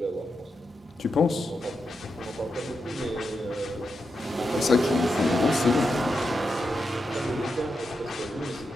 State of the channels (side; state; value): both; normal; correlation 0.86